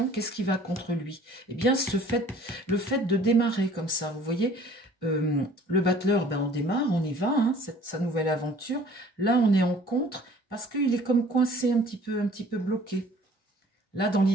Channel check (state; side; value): normal; both; correlation 0.52